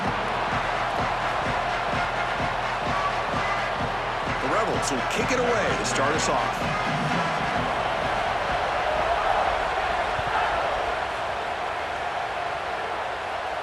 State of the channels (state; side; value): identical; both; correlation 1.00